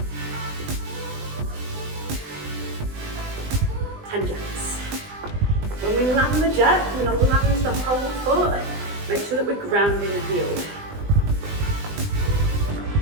10 jacks. When we land the jack, we're going to land the whole foot. Make sure that we're grounding the heel.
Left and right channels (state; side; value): late; left; 20 ms